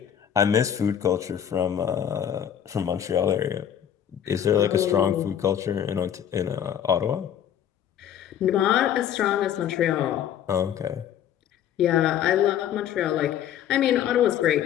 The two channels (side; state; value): right; quieter; 9.8 dB